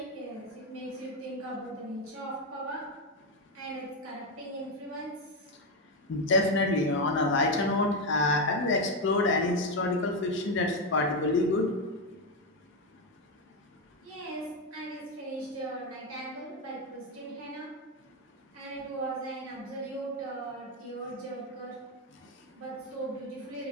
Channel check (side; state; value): both; normal; correlation 0.08